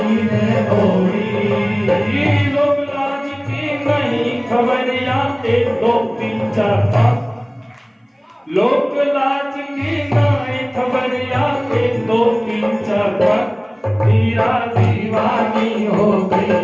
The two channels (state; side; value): identical; both; correlation 1.00